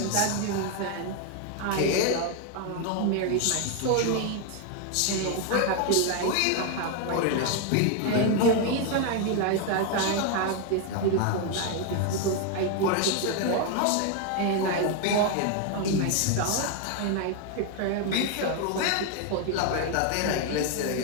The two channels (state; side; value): different; both; correlation 0.01